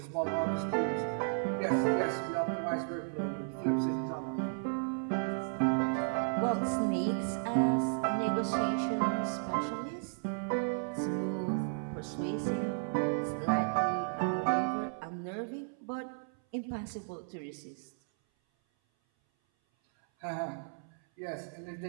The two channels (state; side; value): silent; left; 55 dB below the other